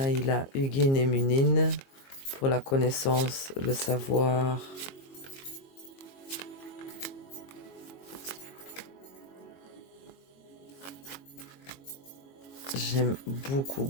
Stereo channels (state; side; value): late; right; 22 ms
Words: il a Hugin et Munin pour la connaissance, le savoir. J'aime beaucoup